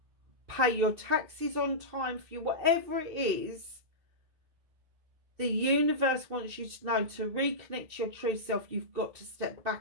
pay your taxes on time for you. Whatever it is, the universe wants you to know, to reconnect to your true self, you've got to step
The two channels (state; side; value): late; left; 2.7 ms